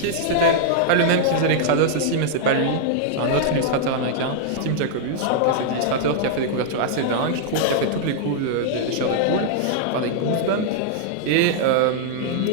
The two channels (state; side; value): different; both; correlation -0.01